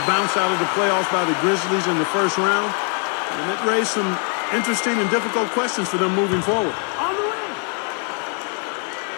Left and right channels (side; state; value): right; quieter; 39.5 dB